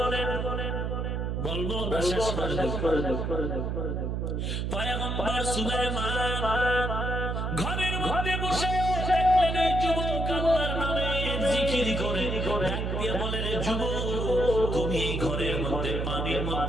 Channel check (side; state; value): right; noise; hum, 1 dB below the sound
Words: বলবো না শেষ করে দেব। পয়গম্বর সুলাইমান ঘরের মধ্যে বসে দেখলেন এই যুবক আল্লাহর নামে জিকির করে। ডাক দিয়ে বলে, রে যুবক, তুমি এই ঘরের মধ্যে পানির